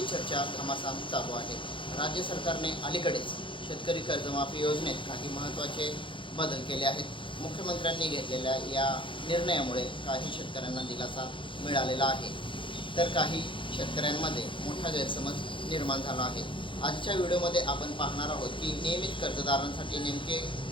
चर्चा घमासान चालू आहे। राज्य सरकारने अलीकडेच शेतकरी कर्जमाफी योजनेत काही महत्त्वाचे बदल केले आहेत। मुख्यमंत्र्यांनी घेतलेल्या या निर्णयामुळे काही शेतकऱ्यांना दिलासा मिळालेला आहे, तर काही शेतकऱ्यांमध्ये मोठा गैरसमज निर्माण झाला आहे। आजच्या व्हिडिओमध्ये आपण पाहणार आहोत की नियमित कर्जदारांसाठी नेमके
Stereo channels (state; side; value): late; right; 0.24 ms